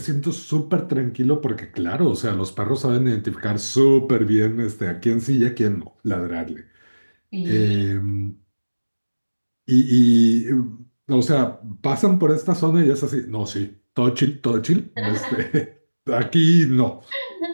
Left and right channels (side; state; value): both; inverted; correlation -1.00